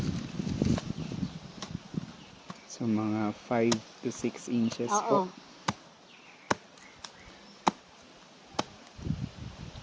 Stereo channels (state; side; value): identical; both; correlation 1.00